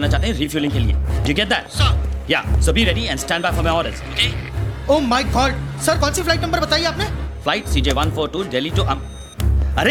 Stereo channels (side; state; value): both; identical; correlation 1.00